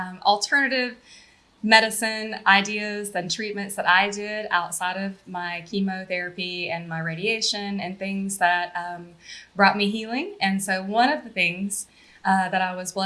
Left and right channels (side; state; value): both; identical; correlation 1.00